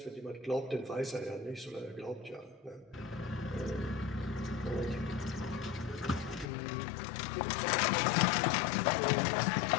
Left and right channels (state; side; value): drops out; right; at 6.5 s